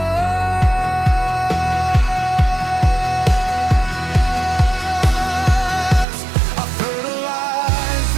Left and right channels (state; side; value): drops out; left; at 6.1 s